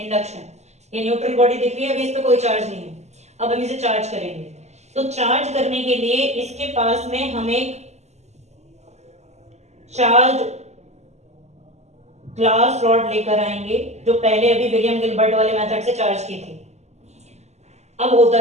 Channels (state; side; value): late; left; 0.33 ms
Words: ये न्यूट्रल बॉडी दिख रही है, अभी इस पे कोई चार्ज नहीं है, अब हम इसे चार्ज करेंगे। तो चार्ज करने के लिए इसके पास में हम एक चार्ज ग्लास रॉड लेकर आएंगे, जो पहले अभी विलियम गिलबर्ट वाले मेथड से चार्ज की थी। अब